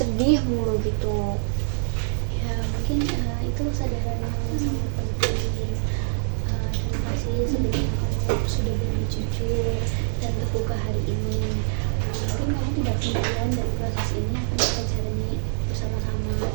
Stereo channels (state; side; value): silent; left; digital silence